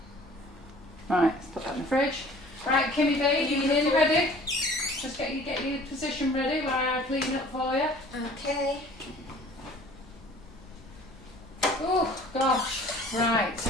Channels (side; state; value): both; normal; correlation 0.50